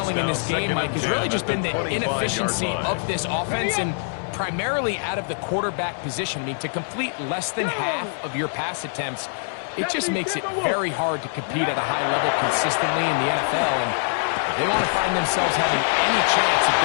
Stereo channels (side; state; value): right; silent; digital silence